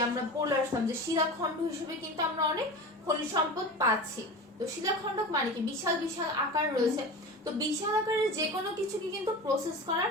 আমরা বলে আসলাম যে শিলাখণ্ড হিসেবে কিন্তু আমরা অনেক খনিজ সম্পদ পাচ্ছি। তো শিলাখণ্ড মানে কি বিশাল বিশাল আকার রয়েছে, তো বিশাল আকারের যে কোনো কিছুকে কিন্তু প্রসেস করা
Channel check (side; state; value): both; normal; correlation 0.31